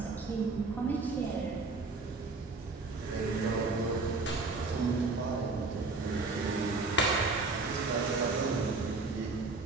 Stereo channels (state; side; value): quieter; left; 3.8 dB